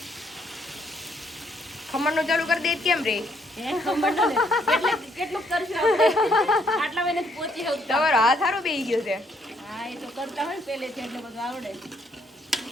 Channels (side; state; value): both; normal; correlation 0.70